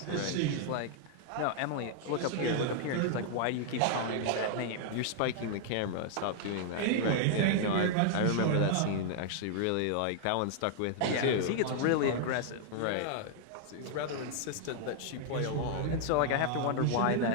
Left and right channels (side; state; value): both; different; correlation -0.01